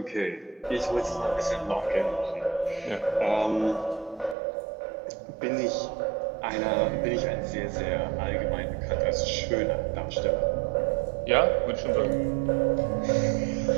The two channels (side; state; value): left; drops out; at 4.4 s